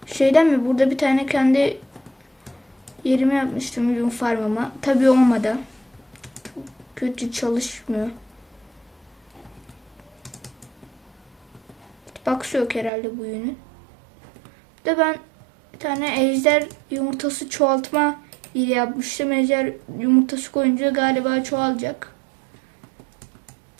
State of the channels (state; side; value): drops out; left; at 12.9 s